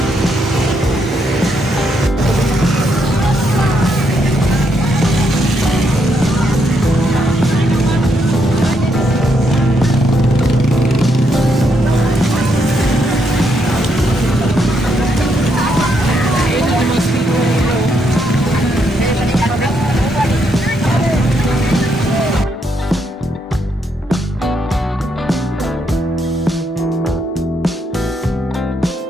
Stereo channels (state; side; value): normal; both; correlation 0.77